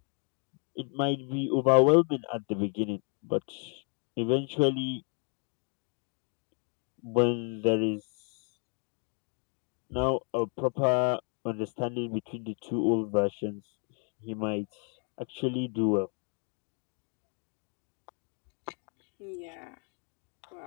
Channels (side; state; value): right; quieter; 38.8 dB